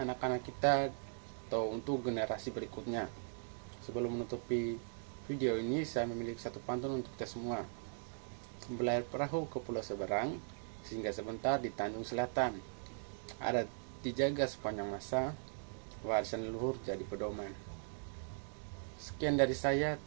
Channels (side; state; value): left; silent; digital silence